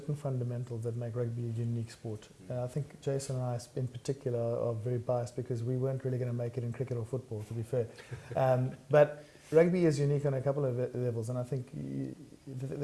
fundamentals that make rugby a unique sport. I think Jason and I in particular are very biased because we weren't really going to make it in cricket or football, to be fair. But rugby is unique on a couple of levels, and I think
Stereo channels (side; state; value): both; identical; correlation 1.00